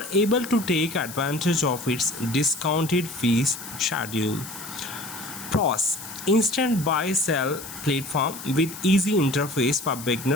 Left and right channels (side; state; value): left; noise; hiss, 12 dB below the sound